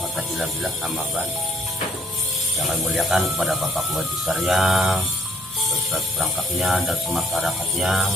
illa billah, amma ba'd. Yang kami muliakan kepada Bapak Wajib Syariah, beserta perangkatnya dan masyarakatnya,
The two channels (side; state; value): both; normal; correlation 0.61